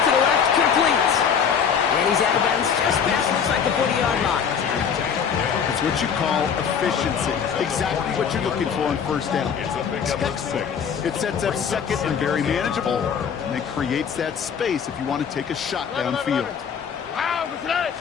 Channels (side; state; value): right; quieter; 7.2 dB